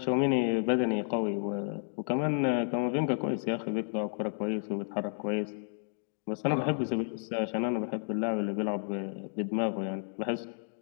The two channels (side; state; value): right; silent; digital silence